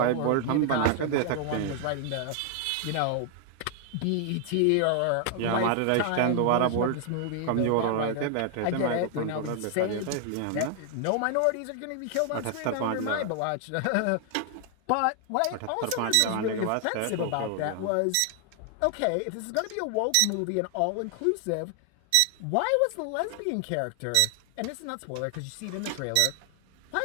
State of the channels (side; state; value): both; different; correlation 0.00